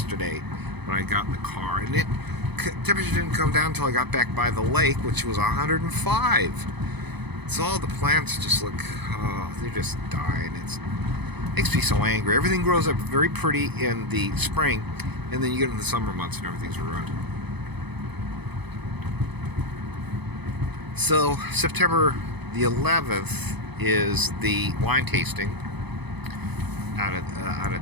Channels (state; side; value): late; left; 0.99 ms